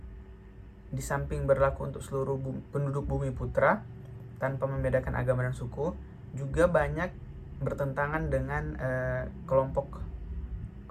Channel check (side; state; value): both; identical; correlation 1.00